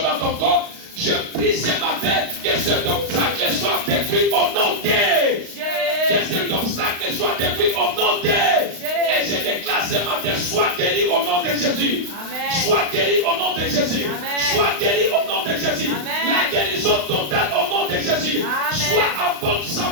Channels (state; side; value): late; left; 35 ms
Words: dans ton corps, je prie ce matin que cet obstacle soit détruit au nom de Jésus. Que cet obstacle soit détruit au nom de Jésus. Et je déclare ce matin, sois guéri au nom de Jésus. Amen. Sois guéri au nom de Jésus. Amen. Sois guéri au nom de Jésus. Amen. La guérison totale au nom de Jésus. Amen. Sois en bonne